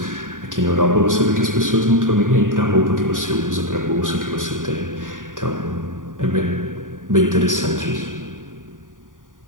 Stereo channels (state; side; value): late; left; 0.89 ms